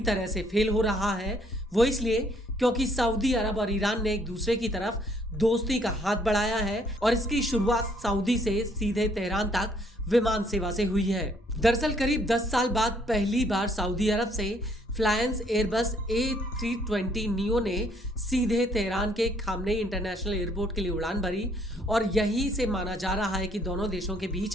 तरह से फेल हो रहा है। वो इसलिए क्योंकि सऊदी अरब और ईरान ने एक दूसरे की तरफ दोस्ती का हाथ बढ़ाया है, और इसकी शुरुआत सऊदी से सीधे तेहरान तक विमान सेवा से हुई है। दरअसल करीब 10 साल बाद पहली बार सऊदी अरब से फ्लायंस एयरबस A320 नियो ने सीधे तेहरान के खामनेई इंटरनेशनल एयरपोर्ट के लिए उड़ान भरी, और यहीं से माना जा रहा है कि दोनों देशों के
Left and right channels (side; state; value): both; normal; correlation 0.66